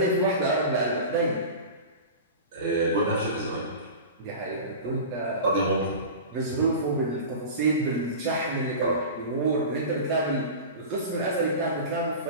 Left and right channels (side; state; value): both; inverted; correlation -0.32